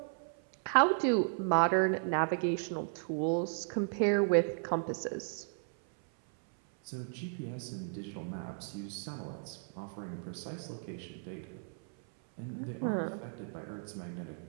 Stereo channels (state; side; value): silent; left; 55 dB below the other